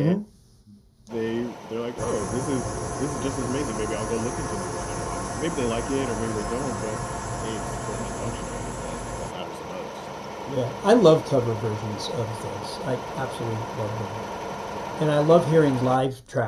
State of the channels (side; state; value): both; identical; correlation 1.00